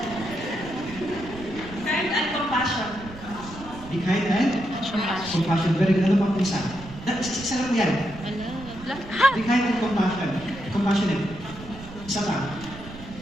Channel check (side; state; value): right; noise; rumble, 15 dB below the sound